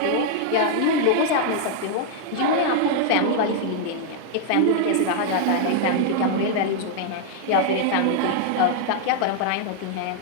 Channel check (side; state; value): both; different; correlation 0.00